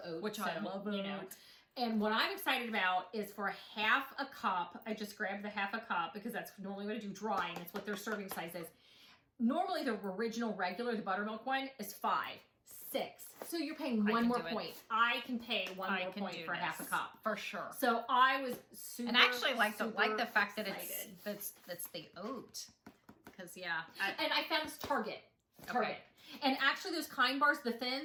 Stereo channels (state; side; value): identical; both; correlation 1.00